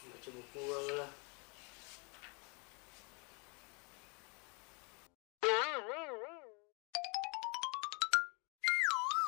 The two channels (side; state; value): right; quieter; 32.2 dB